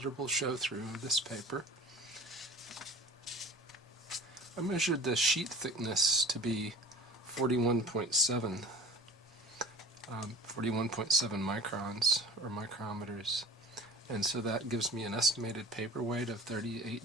show-through of this paper. I measured the sheet thickness to be 41.7 microns, or micrometers, and so that gives me an estimated paper weight of 38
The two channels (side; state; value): both; normal; correlation 0.40